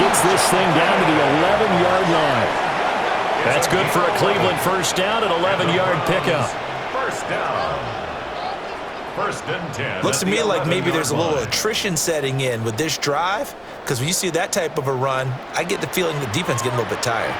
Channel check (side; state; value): both; identical; correlation 1.00